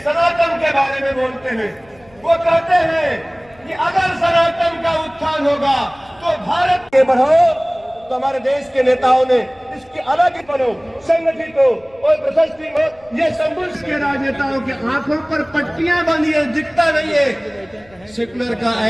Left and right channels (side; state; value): left; noise; rumble, 29 dB below the sound